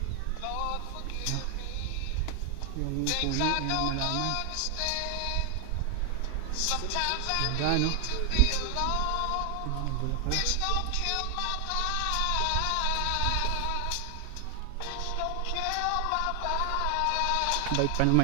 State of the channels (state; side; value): different; both; correlation 0.00